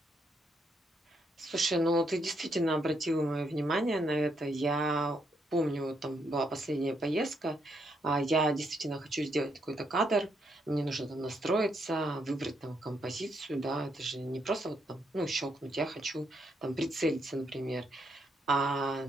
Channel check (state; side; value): normal; both; correlation 0.76